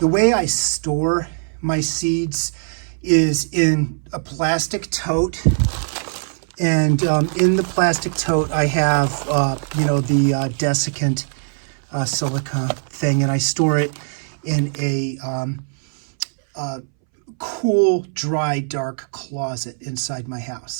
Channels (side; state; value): left; silent; 63 dB below the other